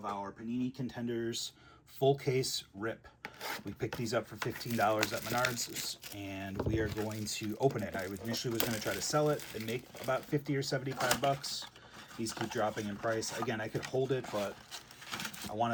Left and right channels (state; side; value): identical; both; correlation 1.00